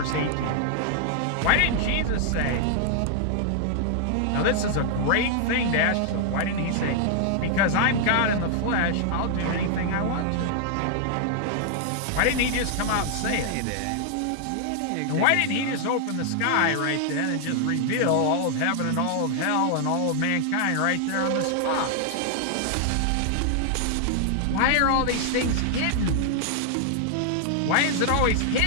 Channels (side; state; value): both; different; correlation -0.01